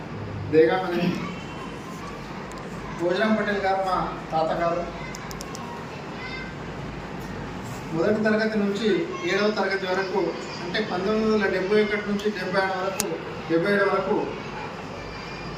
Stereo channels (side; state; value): both; identical; correlation 1.00